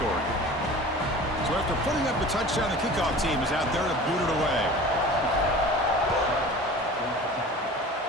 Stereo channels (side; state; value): both; normal; correlation 0.40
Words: So after putting up a touchdown, the kickoff team is out there to boot it away.